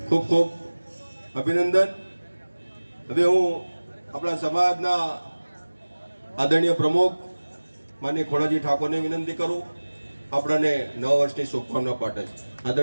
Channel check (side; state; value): both; inverted; correlation -1.00